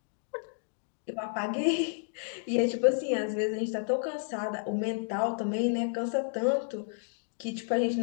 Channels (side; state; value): right; silent; digital silence